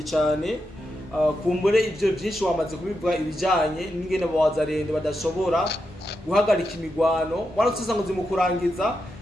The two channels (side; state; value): both; normal; correlation 0.86